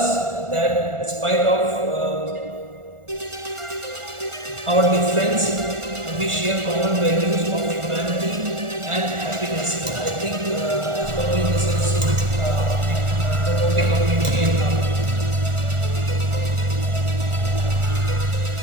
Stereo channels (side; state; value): left; late; 1.4 ms